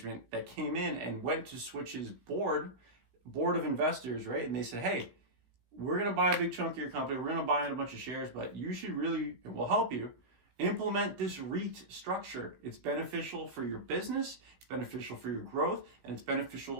that came in and went to Switch's board of investors, right? And they said, hey, we're going to buy a big chunk of your company. We're going to buy in a bunch of shares, but you should really, and we'll help you, implement this REIT structure. It's beneficial for your business, it's beneficial for your growth, and it's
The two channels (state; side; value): late; left; 16 ms